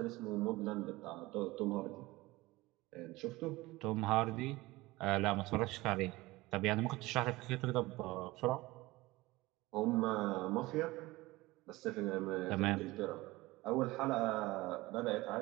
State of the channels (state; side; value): quieter; left; 20.2 dB